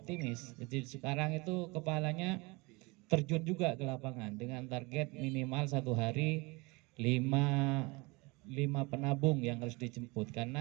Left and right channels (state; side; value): quieter; left; 25.8 dB